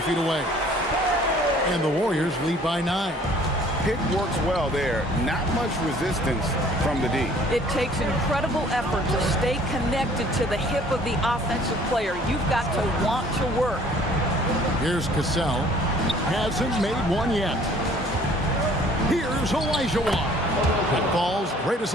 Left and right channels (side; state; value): both; normal; correlation 0.55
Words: feet away. And the Warriors lead by 9. Pick works well there. Not much resistance from the D. It takes incredible effort to stay connected to the hip of the offensive player. You've got to want to work. Here's Cassell. Hasn't made one yet. Here's Olajuwon. That falls. Great